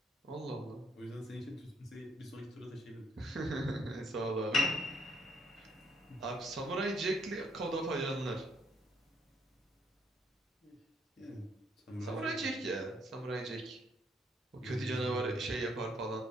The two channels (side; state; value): both; normal; correlation 0.70